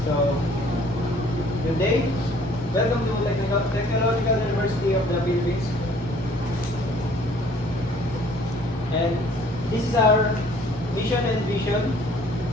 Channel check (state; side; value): normal; both; correlation 0.56